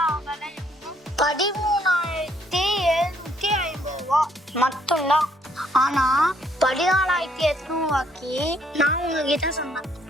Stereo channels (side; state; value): both; normal; correlation 0.68